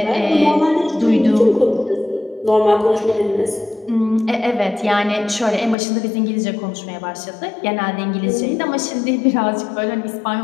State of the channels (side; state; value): right; drops out; at 5.8 s